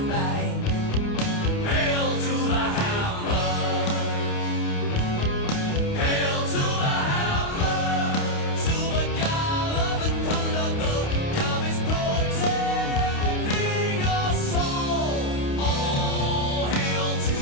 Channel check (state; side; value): late; right; 28 ms